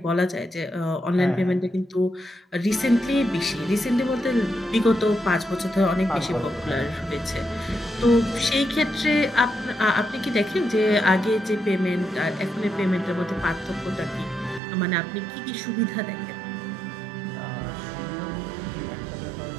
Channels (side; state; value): left; drops out; at 14.6 s